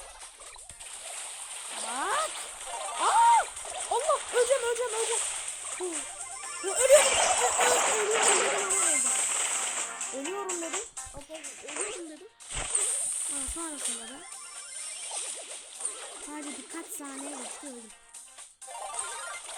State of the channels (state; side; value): identical; both; correlation 1.00